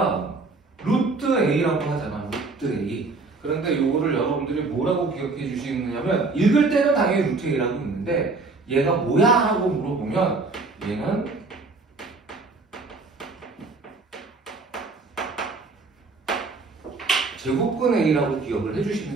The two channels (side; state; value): left; quieter; 3.8 dB